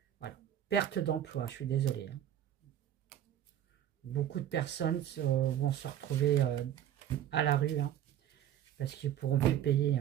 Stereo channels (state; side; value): quieter; left; 11.0 dB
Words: Voilà. Perte d'emploi, je suis désolée. Hein. Beaucoup de personnes vont se retrouver à la rue, hein, parce qu'ils ne pourront plus payer.